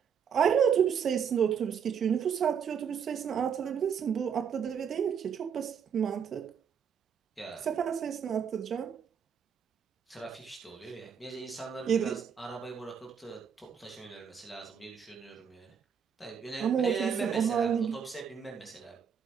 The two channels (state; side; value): quieter; left; 7.3 dB